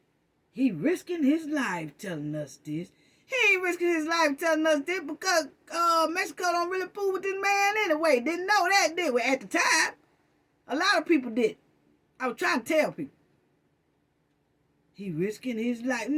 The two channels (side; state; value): both; identical; correlation 1.00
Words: He risking his life telling us this. He ain't risking his life telling us this because Mexico don't really fool with this man anyway. Didn't know that, did we? At the time, a lot of people did. I was trying to tell people. He risking his life.